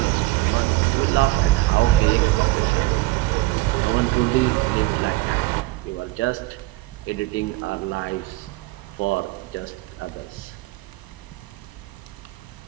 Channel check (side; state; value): left; quieter; 19.8 dB